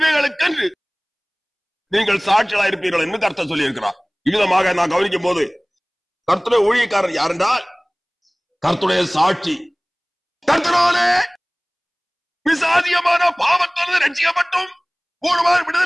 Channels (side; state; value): both; identical; correlation 1.00